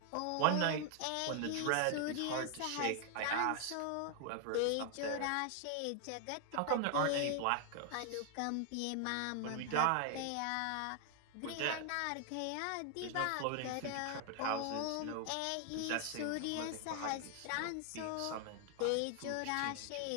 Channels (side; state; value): both; different; correlation 0.00